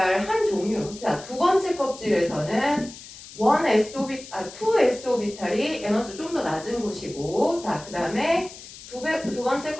한 종류. 자, 두 번째 껍질에서는 2s 오비탈이 에너지 좀 더 낮은 곳이고, 자, 그 다음에 두 번째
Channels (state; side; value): noise; left; hiss, 16 dB below the sound